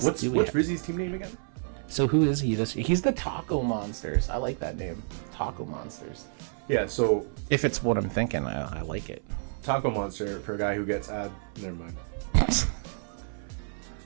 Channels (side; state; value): left; silent; 55 dB below the other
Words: What's do we have? Rizzy's team name again? So who is he this year? He's the Taco Monsters. I like that name. Taco Monsters. Yeah, so If it's what I'm thinking, I like it. Taco Monster for a guy who gets never mind.